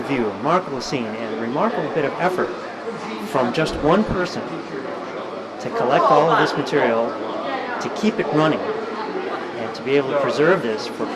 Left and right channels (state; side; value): identical; both; correlation 1.00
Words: view, remarkable scene, and a remarkable bit of effort from just one person to collect all of this material, to keep it running, and to be able to preserve this for